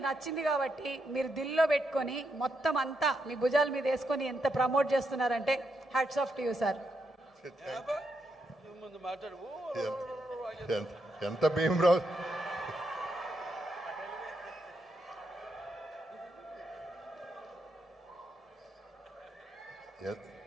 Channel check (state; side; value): normal; both; correlation 0.81